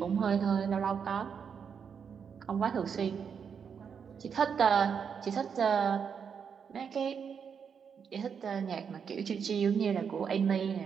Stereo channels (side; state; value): left; quieter; 6.8 dB